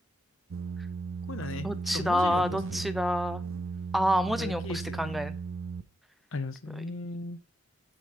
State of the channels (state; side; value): normal; both; correlation 0.84